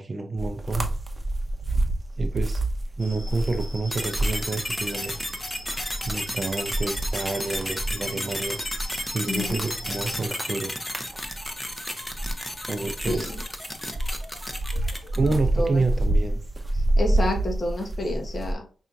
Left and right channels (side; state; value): both; normal; correlation 0.92